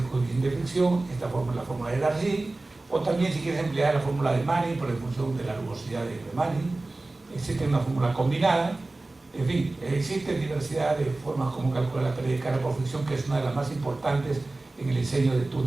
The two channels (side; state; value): left; quieter; 3.0 dB